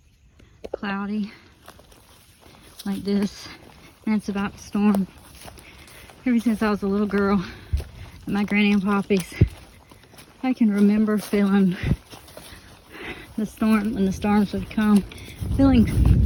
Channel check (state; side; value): identical; both; correlation 1.00